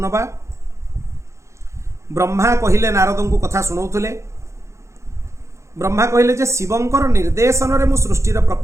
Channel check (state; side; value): late; left; 0.14 ms